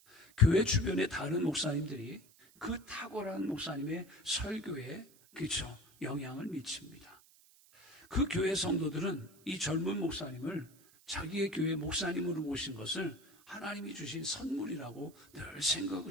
교회 주변의 다른 목사님들이 그 탁월한 목사님의 설교에, 그렇죠, 영향을 미칩니다. 그 교회 성도들은 이 젊은 목사님을 자기의 교회 목사님으로 모신 것을 하나님이 주신 선물이라고 늘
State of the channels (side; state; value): right; noise; hiss, 27 dB below the sound